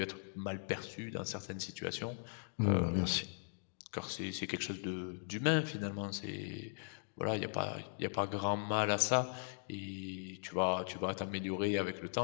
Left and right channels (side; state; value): right; silent; digital silence